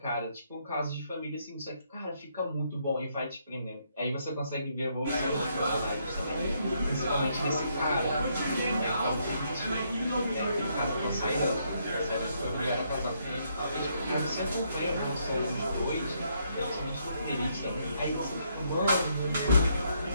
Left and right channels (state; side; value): inverted; both; correlation -0.73